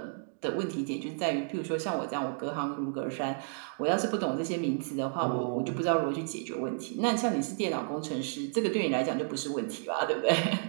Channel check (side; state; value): left; silent; 57 dB below the other